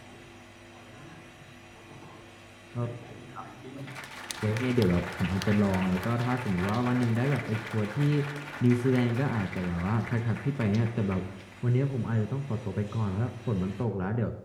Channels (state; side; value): identical; both; correlation 1.00